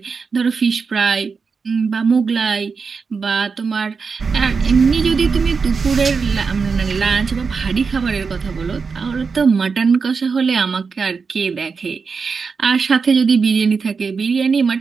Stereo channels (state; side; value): quieter; left; 5.1 dB